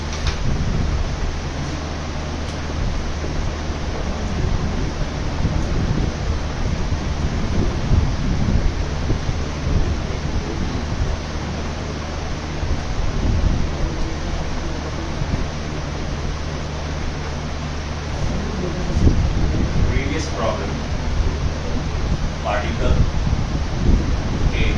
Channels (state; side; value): identical; both; correlation 1.00